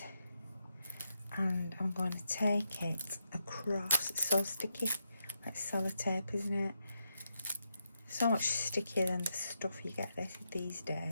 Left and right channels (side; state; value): both; inverted; correlation -0.83